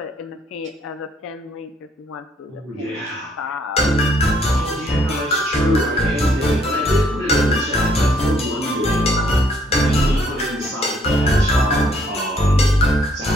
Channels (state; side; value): normal; both; correlation 0.67